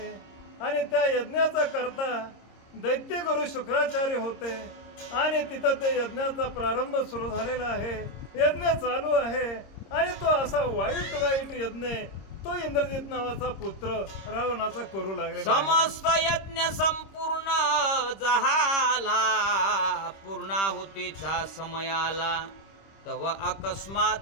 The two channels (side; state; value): right; late; 25 ms